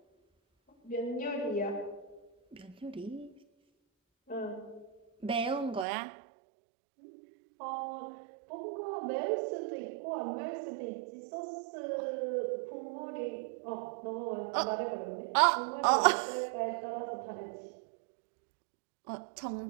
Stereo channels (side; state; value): left; drops out; at 5.9 s